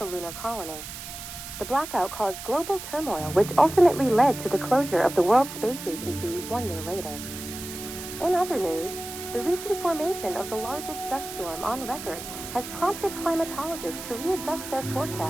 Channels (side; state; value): right; noise; hiss, 10 dB below the sound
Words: lunar colony. The blackout caused global turmoil, which ultimately led to the closure of the World Space Agency 1 year later. In other news, the recent formation of the largest dust storm on record has prompted climatologists to readjust their